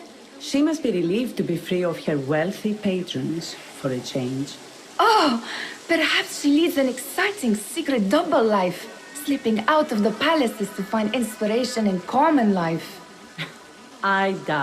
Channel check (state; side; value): identical; both; correlation 1.00